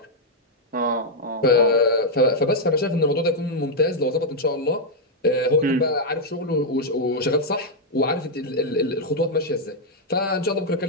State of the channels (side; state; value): both; normal; correlation -0.02